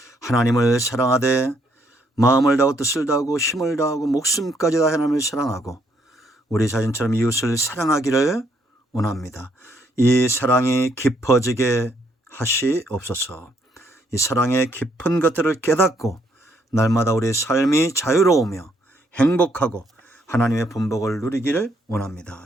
하나님을 사랑하되 마음을 다하고 뜻을 다하고 힘을 다하고 목숨까지 다 하나님을 사랑하고 우리 자신처럼 이웃을 사랑하기를 원합니다. 이 사랑이 깊어지게 하시옵소서. 이 사랑의 깊은 것들을 깨닫고 날마다 우리의 삶이 자유로우며 행복하고 하나님의 분복을 누리기를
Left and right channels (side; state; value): both; normal; correlation 0.71